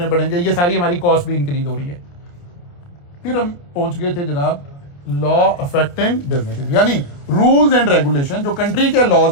पड़ेंगे, ये सारी हमारी कॉस्ट भी इंक्रीज हो रही है। फिर हम पहुंच गए थे जनाब लॉ अफेक्टिंग बिजनेस, यानी रूल्स एंड रेगुलेशन, जो कंट्री के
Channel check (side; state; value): right; late; 28 ms